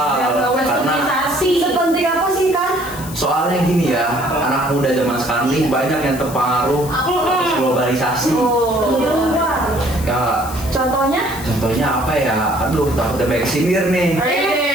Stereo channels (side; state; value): left; noise; hiss, 14 dB below the sound